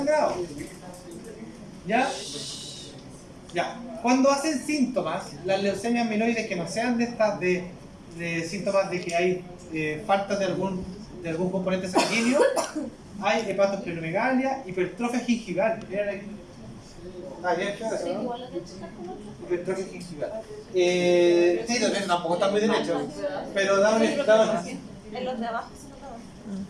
¿Ya? Ya. Cuando hacen síntomas, las leucemias mieloides que no sean de estas de síntomas de que hay falta de algún componente sanguíneo, hay hepatosplenomegalia, hipertrofia gingival. ¿Vieron aquí? ¿No? Hipertrofia gingival. Sí, tampoco está muy derecho, pero da en los de abajo se nota más.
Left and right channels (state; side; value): identical; both; correlation 1.00